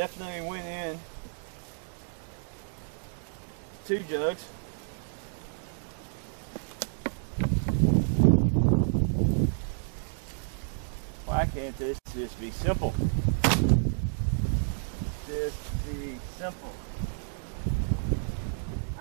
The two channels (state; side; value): silent; left; digital silence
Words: went in 2 jugs. Why can't this just be simple? Just be simple.